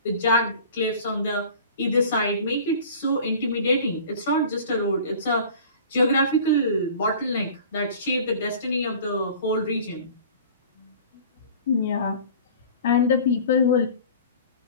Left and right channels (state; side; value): inverted; both; correlation -0.44